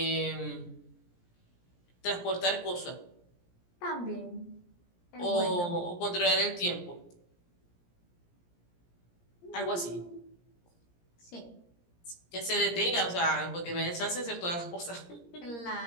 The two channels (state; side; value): late; right; 17 ms